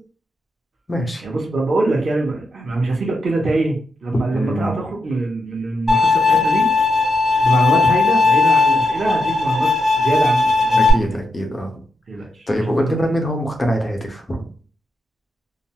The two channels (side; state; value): both; normal; correlation 0.84